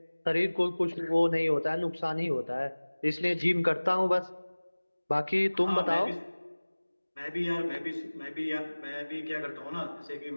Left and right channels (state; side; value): inverted; both; correlation -1.00